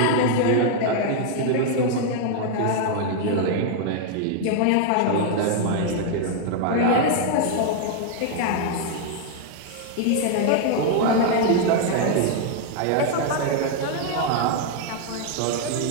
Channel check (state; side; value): different; both; correlation 0.00